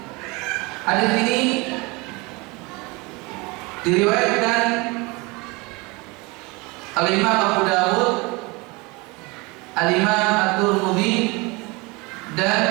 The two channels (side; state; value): left; quieter; 26.0 dB